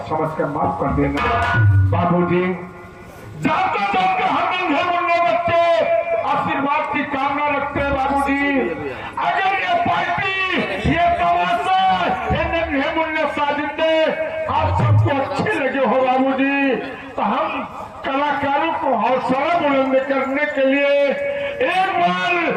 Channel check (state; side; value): identical; both; correlation 1.00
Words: समझ कर माफ कर देना बाबूजी। जाते जाते हम नन्हे मुन्ने बच्चे आशीर्वाद की कामना रखते हैं बाबूजी। अगर ये पार्टी ये तमाशा ये नन्हे मुन्ने साजिंदे आप सबको अच्छे लगे हो बाबूजी तो हम कलाकारों को हौसला बुलंद करने के लिए एक बार